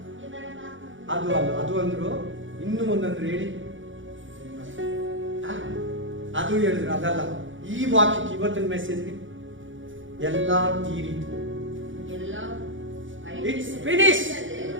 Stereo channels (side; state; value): left; late; 0.56 ms